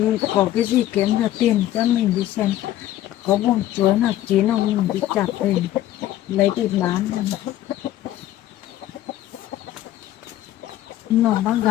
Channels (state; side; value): quieter; right; 13.6 dB